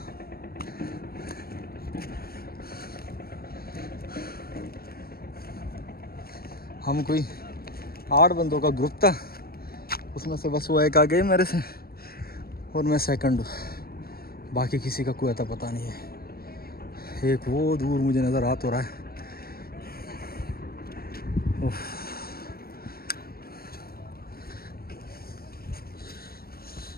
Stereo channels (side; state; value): right; late; 0.44 ms